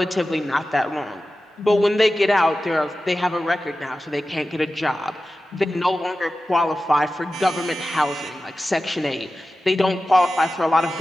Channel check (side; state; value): both; normal; correlation 0.94